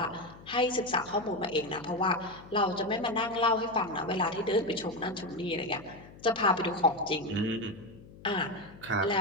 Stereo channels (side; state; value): left; noise; hum, 20 dB below the sound